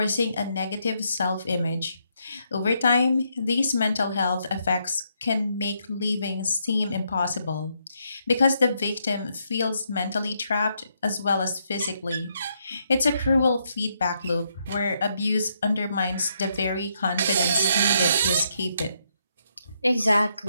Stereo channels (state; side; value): inverted; both; correlation -0.77